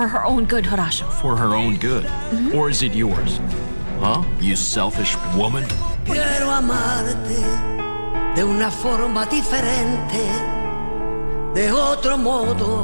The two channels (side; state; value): both; inverted; correlation -1.00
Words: her own good, Horacio. For her own good? Or is it yours? Huh? You selfish woman? Quiero amarte de una forma diferente, de otro